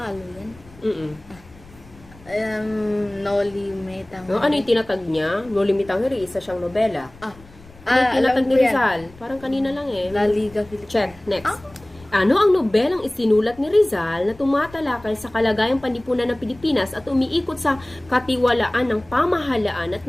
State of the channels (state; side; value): noise; left; rumble, 23 dB below the sound